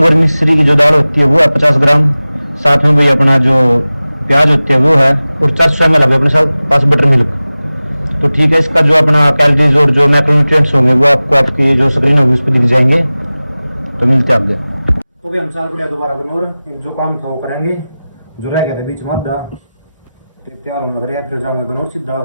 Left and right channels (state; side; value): inverted; both; correlation -0.97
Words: और मिश्री की जो दाल होती है वो है 50 ग्राम, साथ में भी अपना जो प्याज होती है वो है, और 400 ml अपने पास बटर मिल्क। तो ठीक है, इसका जो अपना कैलोरीज और जो मैक्रोन्यूट्रिएंट्स होंगे वो आपको आपकी जो स्क्रीन होगी उस पर दिख जाएंगे। तो मिलते हैं आगे। तो भी हम साल बढ़िया दोबारा गनौर, जो काम था वो करेंगे, जो रह गया था बीच में आधा तैयार होने लग रहा है। फिर जाऊंगे गनौर सीधा।